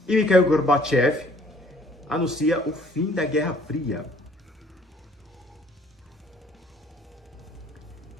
e Mikhail Gorbachev anuncia o fim da Guerra Fria.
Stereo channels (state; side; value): normal; both; correlation 0.58